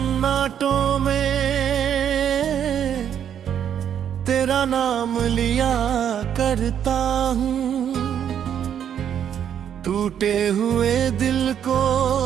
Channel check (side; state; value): left; quieter; 9.1 dB